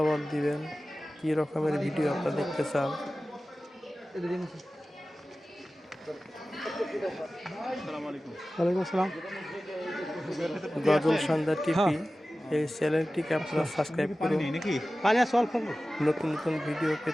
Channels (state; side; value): normal; both; correlation 0.96